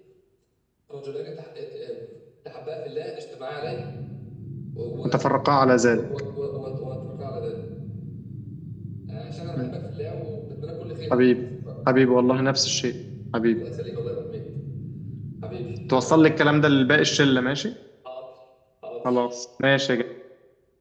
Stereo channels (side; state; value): both; identical; correlation 1.00